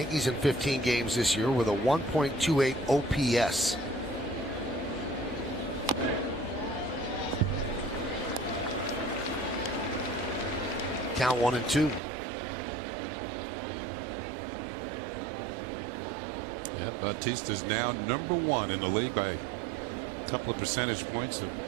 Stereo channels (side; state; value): left; drops out; at 12.0 s